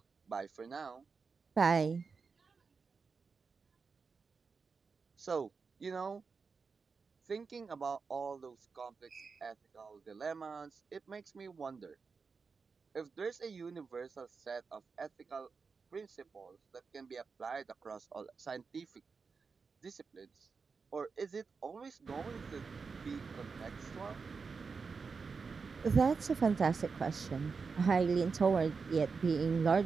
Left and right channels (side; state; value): left; quieter; 5.0 dB